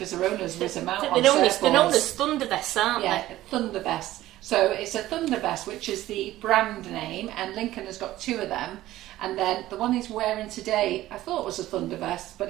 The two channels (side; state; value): left; quieter; 15.2 dB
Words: their owners whiz them out on surfboards. They're known as Thunder Vests, aren't they? Yeah, Thunder Vests. So it's a Thunder Vest, which is the brand name, and Lincoln has got 2 of them. And then the one he's wearing today, I thought was a Thunder Vest,